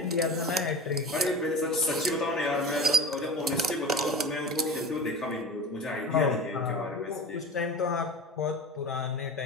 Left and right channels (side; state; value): both; normal; correlation 0.33